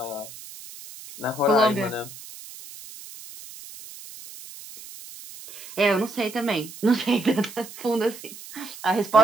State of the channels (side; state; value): right; noise; hiss, 15 dB below the sound